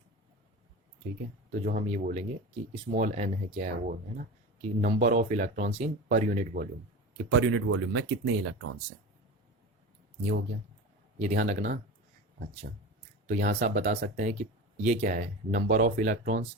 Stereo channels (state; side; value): normal; both; correlation 0.29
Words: ठीक है, तो जो हम ये बोलेंगे कि स्मॉल n है क्या है, वो है ना कि number of electrons in per unit volume, कि पर यूनिट वॉल्यूम में कितने इलेक्ट्रॉन्स हैं। ये हो गया, ये ध्यान रखना। अच्छा, तो यहाँ से आप बता सकते हैं कि ये क्या है, number of electrons